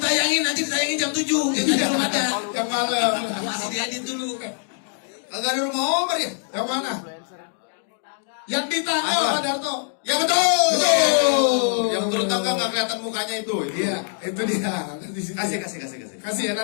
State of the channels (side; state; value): right; silent; 63 dB below the other